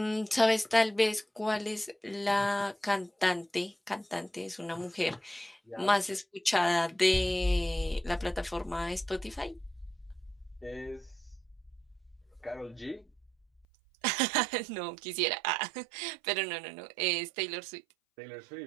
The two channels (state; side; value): drops out; left; at 13.7 s